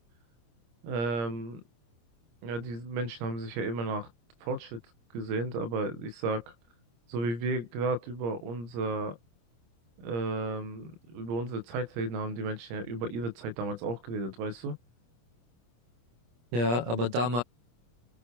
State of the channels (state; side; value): late; left; 25 ms